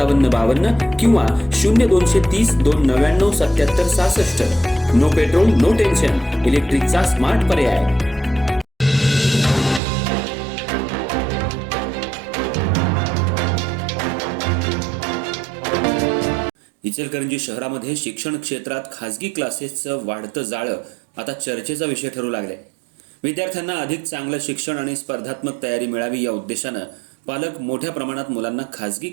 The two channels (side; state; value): left; drops out; at 9.8 s